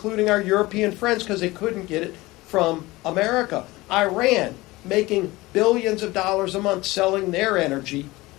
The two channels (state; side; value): quieter; right; 20.3 dB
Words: our European friends, because they couldn't get it from America. Iran making billions of dollars a month selling their energy,